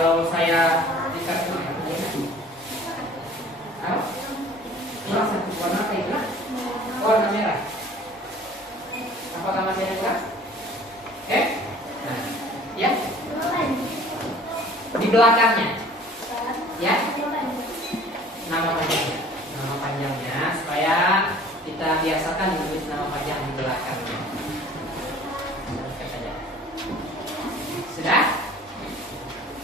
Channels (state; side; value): normal; both; correlation 0.49